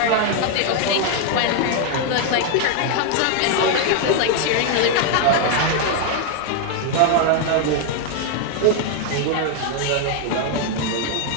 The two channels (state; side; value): different; both; correlation 0.00